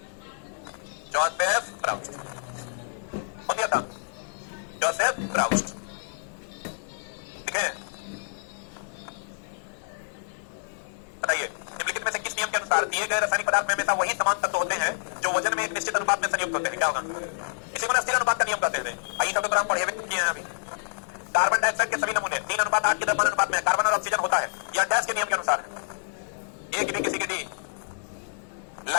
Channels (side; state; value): right; silent; 60 dB below the other